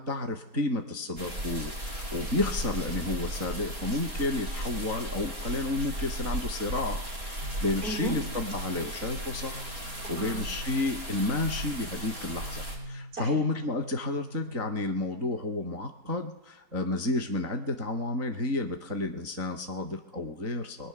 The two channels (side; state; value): left; late; 4.3 ms